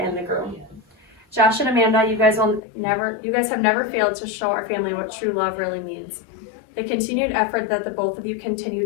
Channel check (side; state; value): right; drops out; at 2.6 s